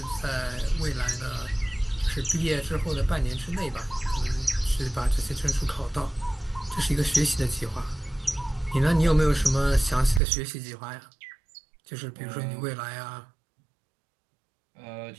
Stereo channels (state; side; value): drops out; left; at 10.2 s